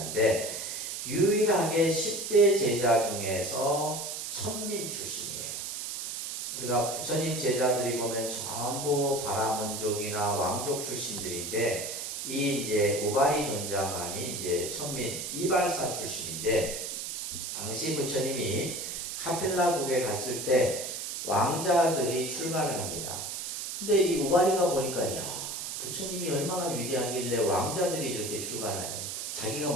유일하게 10대 제자 중에서 천민 출신이에요. 우리가 부처님 제자들이 보면 전부 바라문족이나 왕족 출신들인데 이 이제 우바리 존자만이 이제 천민 이발사 출신인데 당시 부처님이 카필라국에 갔을 때 왕자들이 출가를 합니다. 근데 이 우바리가 보니까 야, 부처님이 얼마나 위대하길래 왕자들이 이렇게 출가를 해요. 자기가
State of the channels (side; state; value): right; noise; hiss, 5 dB below the sound